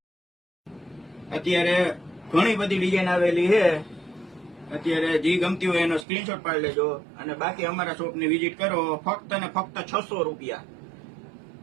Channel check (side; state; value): left; drops out; at 6.1 s